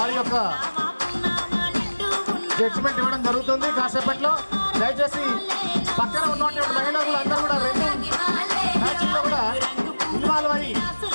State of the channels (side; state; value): both; inverted; correlation -1.00